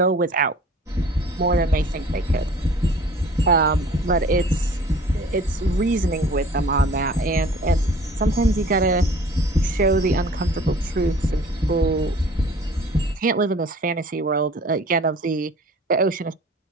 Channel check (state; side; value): normal; both; correlation 0.48